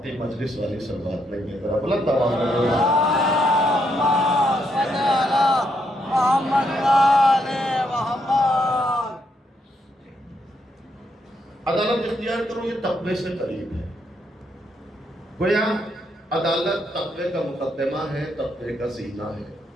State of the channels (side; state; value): both; normal; correlation 0.76